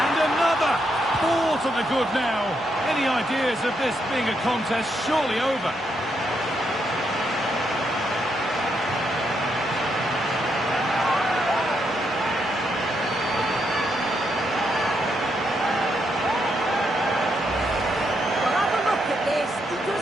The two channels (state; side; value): normal; both; correlation 0.79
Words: another! 4 to the good now. Any ideas of this being a contest surely over?